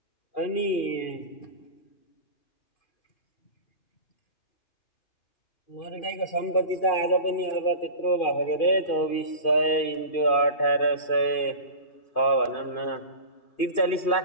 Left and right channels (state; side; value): late; right; 2.5 ms